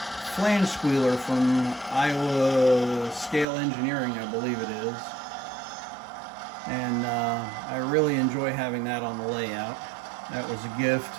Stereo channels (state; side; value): drops out; left; at 3.5 s